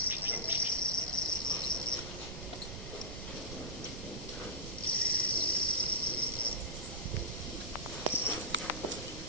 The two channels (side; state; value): right; noise; rumble, 8 dB below the sound